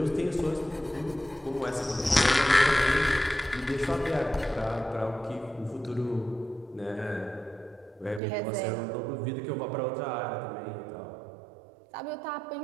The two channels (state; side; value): drops out; left; at 8.2 s